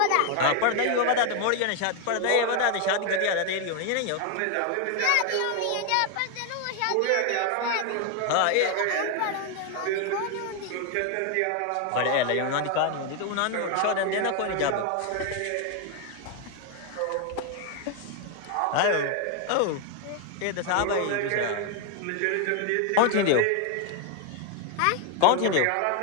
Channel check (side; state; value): both; different; correlation 0.01